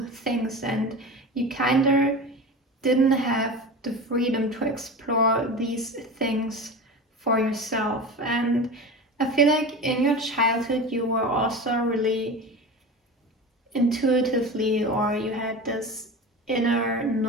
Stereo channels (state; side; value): normal; both; correlation 0.30